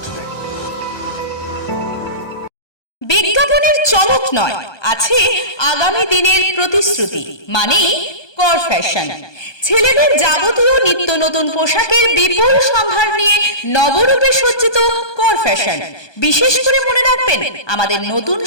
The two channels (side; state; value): right; late; 1.2 ms